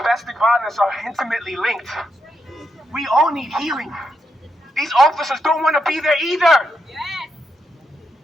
violence are intimately linked. We all need healing. These officers don't want to be there either.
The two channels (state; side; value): normal; both; correlation 0.83